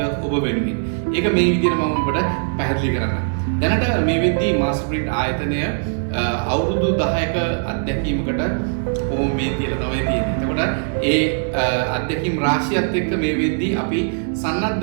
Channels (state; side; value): silent; left; digital silence